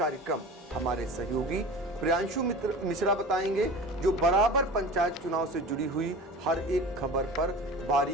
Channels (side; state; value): both; normal; correlation 0.36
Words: हमारे सहयोगी प्रियांशु मिश्रा बताएंगे, जो बराबर पंचायत चुनाव से जुड़ी हुई हर एक खबर पर